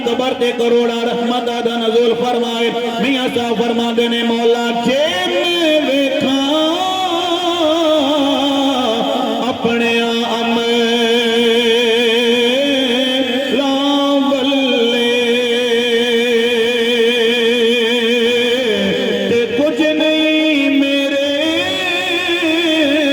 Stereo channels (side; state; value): both; identical; correlation 1.00